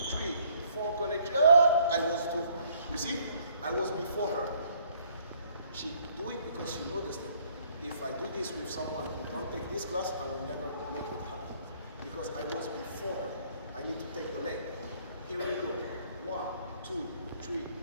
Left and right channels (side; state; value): both; inverted; correlation -0.62